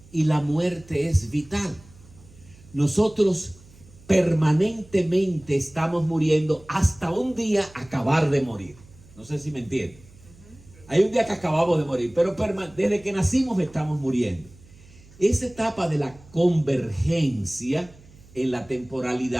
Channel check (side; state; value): right; noise; hum, 24 dB below the sound